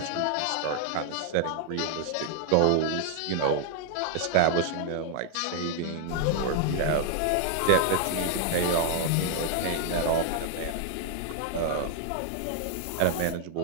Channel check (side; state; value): both; different; correlation 0.00